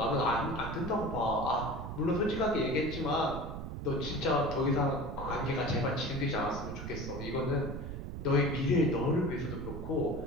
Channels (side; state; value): right; noise; rumble, 7 dB below the sound